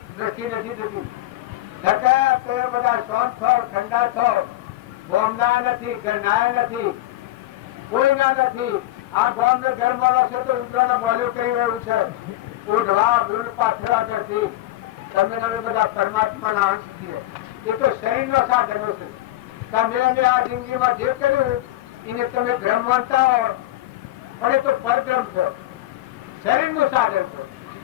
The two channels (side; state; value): right; quieter; 15.8 dB